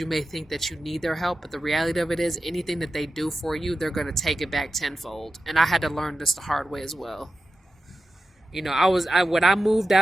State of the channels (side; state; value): both; normal; correlation 0.92